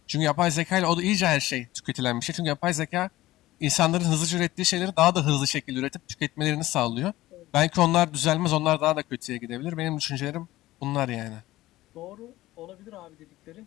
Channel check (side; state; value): right; quieter; 16.7 dB